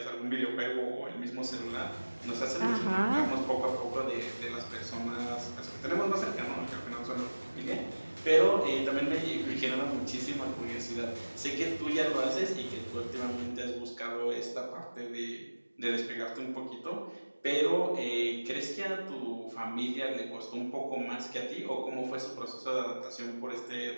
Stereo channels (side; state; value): both; inverted; correlation -1.00